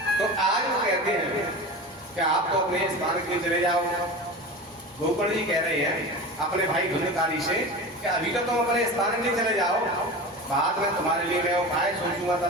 तो आज वो कहते हैं कि आप तो अपने स्थान के लिए चले जाओ। गौकर्ण जी कह रहे हैं अपने भाई धुंधकारी से कि अभी तो तुम अपने स्थान के लिए चले जाओ, बाद में तुम्हारे लिए मैं उपाय सोचूंगा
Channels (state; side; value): normal; both; correlation 0.30